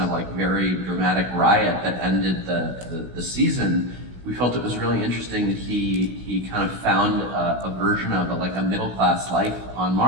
of very dramatic riot that ended the season, we felt it was really interesting that he kind of found a version of a middle class life on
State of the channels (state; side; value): late; left; 16 ms